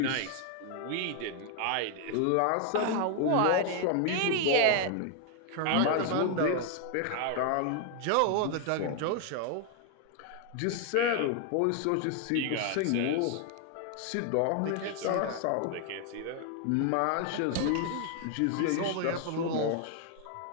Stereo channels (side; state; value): both; different; correlation 0.00